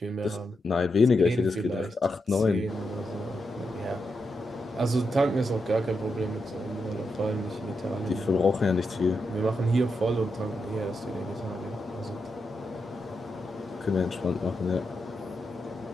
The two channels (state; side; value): normal; both; correlation 0.85